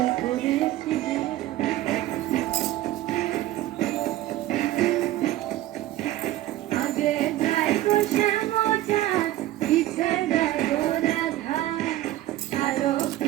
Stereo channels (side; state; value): left; quieter; 14.9 dB